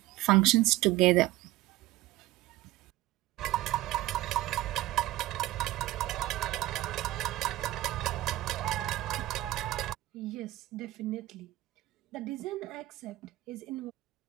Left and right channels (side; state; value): left; quieter; 16.6 dB